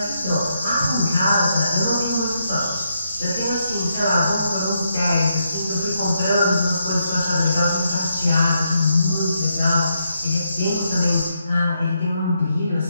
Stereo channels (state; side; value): inverted; both; correlation -0.80